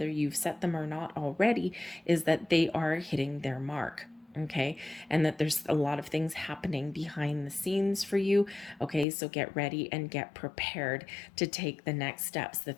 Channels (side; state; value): right; drops out; at 9.1 s